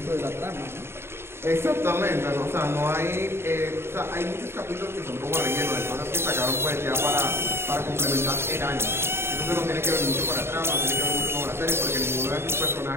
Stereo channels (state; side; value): late; left; 0.12 ms